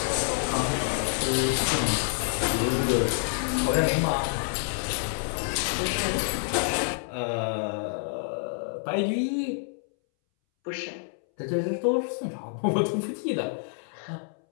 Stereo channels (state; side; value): silent; right; 60 dB below the other